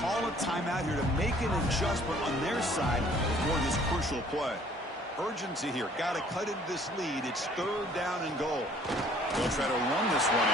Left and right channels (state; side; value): normal; both; correlation 0.57